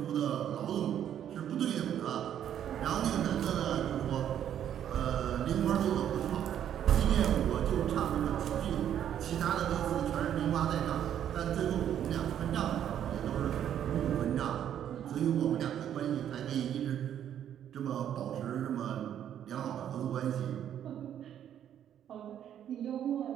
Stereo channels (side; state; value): left; quieter; 10.0 dB